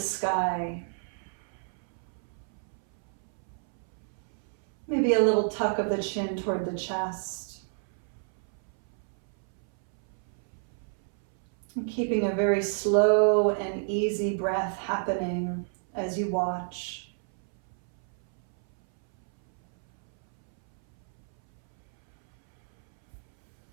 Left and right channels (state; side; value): silent; left; 58 dB below the other